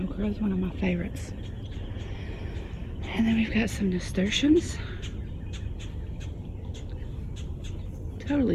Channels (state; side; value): identical; both; correlation 1.00